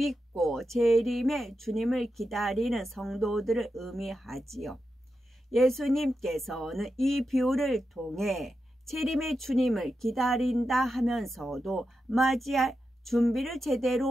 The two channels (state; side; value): normal; both; correlation 0.88